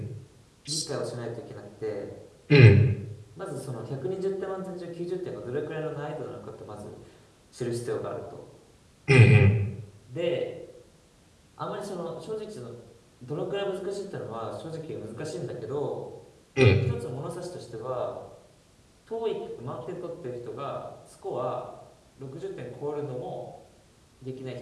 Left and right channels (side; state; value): both; identical; correlation 1.00